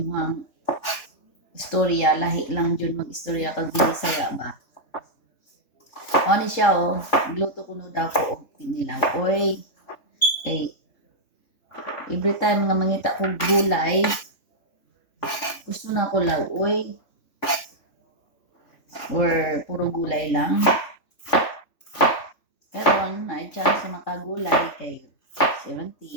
istorya, lahi lang dyan mag-istorya kag Bisaya ba? Ano siya, oh. Gluto ko no daw ko og pinilaw. Oy, kay every time nga mangita ko gulay, gusto na ko law, oy. Or puro gulay lang. Karon ay chance sa makagulay kay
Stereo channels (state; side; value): late; right; 3.4 ms